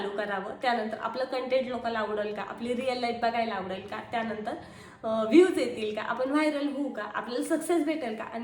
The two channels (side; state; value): both; identical; correlation 1.00